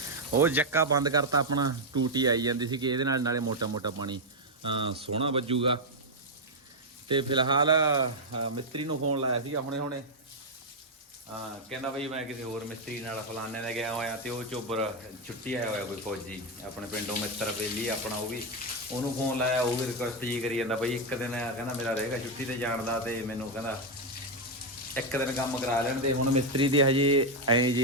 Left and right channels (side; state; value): both; normal; correlation 0.02